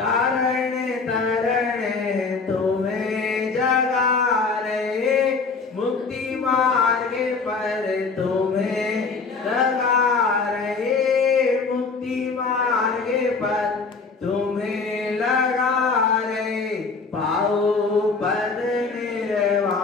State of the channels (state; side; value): quieter; right; 4.5 dB